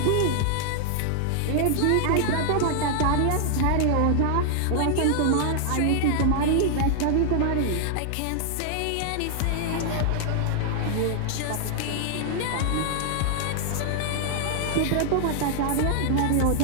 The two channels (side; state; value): both; different; correlation 0.00